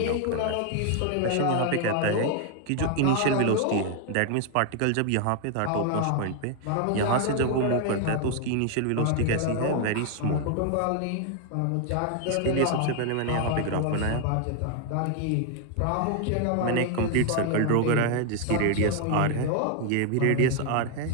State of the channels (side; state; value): both; different; correlation 0.00